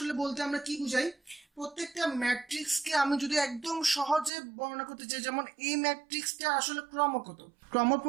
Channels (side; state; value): left; drops out; at 4.3 s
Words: বলতে আমরা কি বুঝাই? প্রত্যেকটা ম্যাট্রিক্সকে আমি যদি একদম সহজে বর্ণনা করতে চাই, যেমন এই ম্যাট্রিক্সটা আসলে ক্রম কত, ক্রম